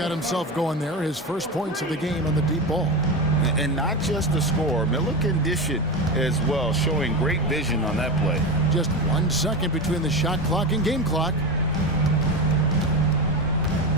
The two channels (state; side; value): normal; both; correlation 0.20